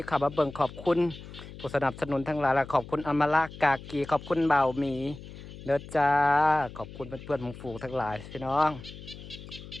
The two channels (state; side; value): noise; left; hum, 14 dB below the sound